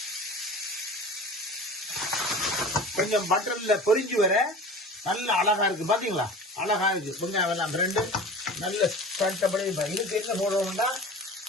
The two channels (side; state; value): both; normal; correlation 0.37